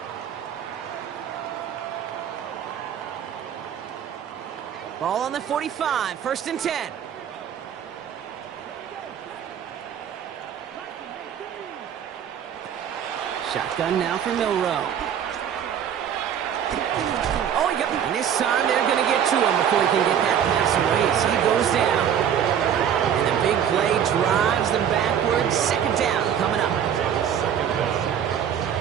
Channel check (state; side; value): quieter; left; 8.9 dB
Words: Ball on the 45, 1st and 10. Shotgun now for Milroe. Oh, and this time they're going to get to him before he can get that pass away as he goes down. And the big play drives them backwards. 2nd down coming up.